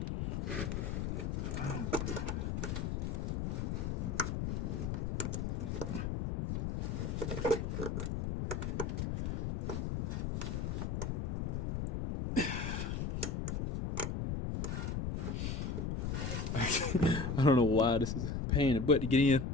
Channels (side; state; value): left; noise; rumble, 1 dB below the sound